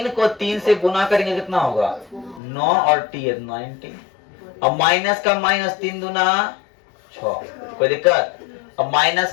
को 3 से गुना करेंगे कितना होगा? 9 और t है 9t। अब माइनस का माइनस 3 दूना 6, कोई दिक्कत? अब माइनस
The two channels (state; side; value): drops out; right; at 2.4 s